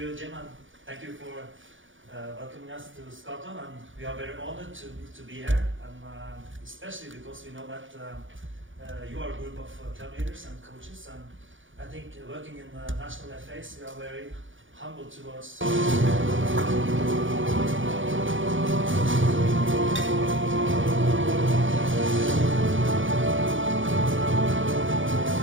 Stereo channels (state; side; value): late; left; 0.57 ms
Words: Jim, and thank you for welcoming us to Scotland. And we are very honored to be here, and especially because we know that you are a group of club leaders and coaches, and I think working in the national FAs, we are very humble towards.